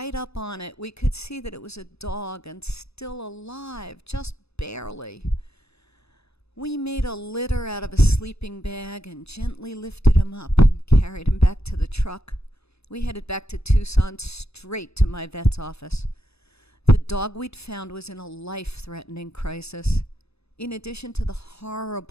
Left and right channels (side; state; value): right; late; 0.79 ms